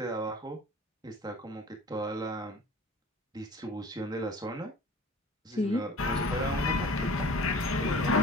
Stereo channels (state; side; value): normal; both; correlation 0.43